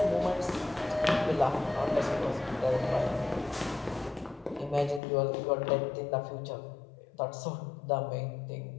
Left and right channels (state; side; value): drops out; right; at 5.0 s